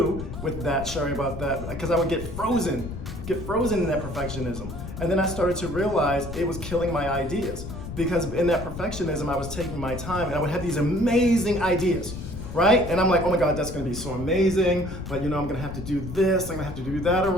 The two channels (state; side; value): noise; left; rumble, 9 dB below the sound